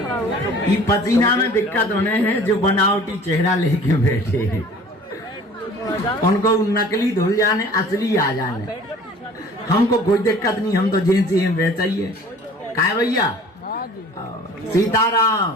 ये पसीना में दिक्कत होने हैं जो बनावटी चेहरा लेके बैठे हैं, उनको नकली धुल जाने असली आ जाने। हमको कोई दिक्कत नहीं, हम तो जेंस ही वैसा ही है। काय भैया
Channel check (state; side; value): normal; both; correlation 0.47